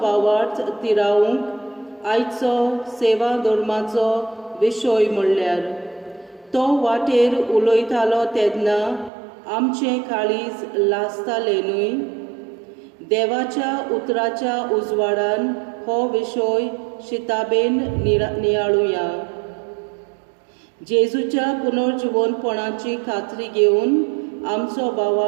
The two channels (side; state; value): left; drops out; at 9.1 s